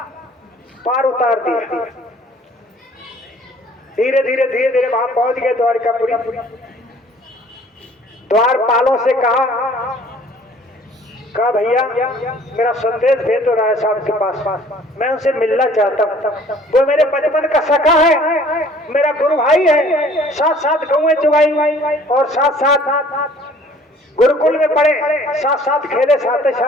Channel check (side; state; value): both; normal; correlation 0.54